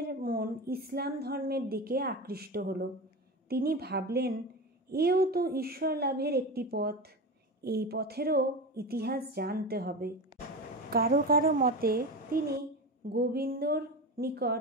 মন ইসলাম ধর্মের দিকে আকৃষ্ট হলো। তিনি ভাবলেন, এও তো ঈশ্বর লাভের একটি পথ, এই পথেরও ইতিহাস জানতে হবে। কারো কারো মতে তিনি গোবিন্দর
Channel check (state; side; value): normal; both; correlation 0.25